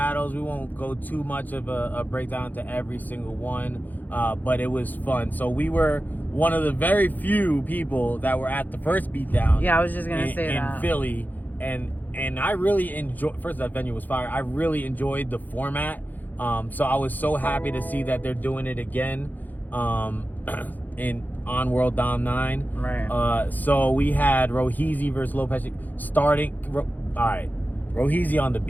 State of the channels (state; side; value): late; right; 0.084 ms